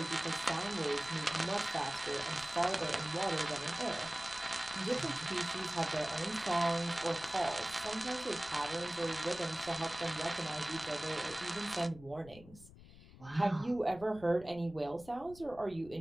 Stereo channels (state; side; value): noise; left; rumble, 19 dB below the sound